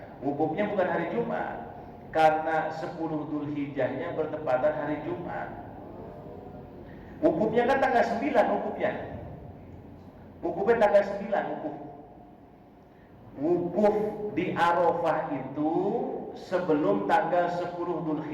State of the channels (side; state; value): both; identical; correlation 1.00